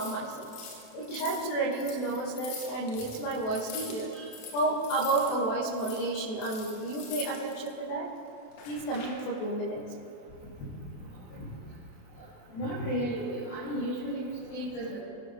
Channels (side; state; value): right; late; 28 ms